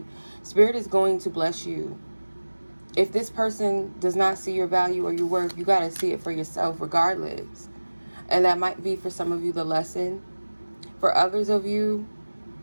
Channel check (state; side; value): inverted; both; correlation -1.00